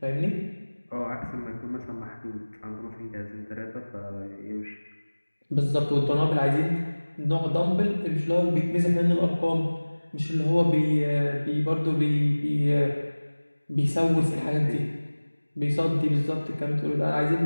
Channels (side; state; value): both; inverted; correlation -1.00